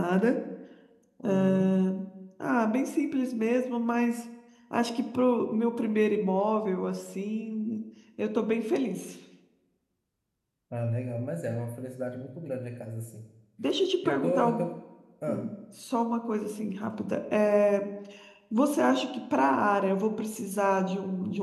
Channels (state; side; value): identical; both; correlation 1.00